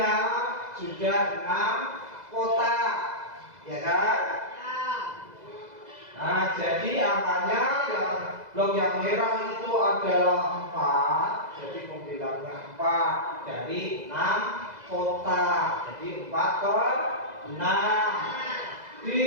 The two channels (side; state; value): left; late; 2.0 ms